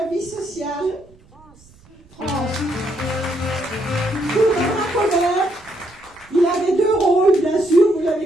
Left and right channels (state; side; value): noise; right; rumble, 27 dB below the sound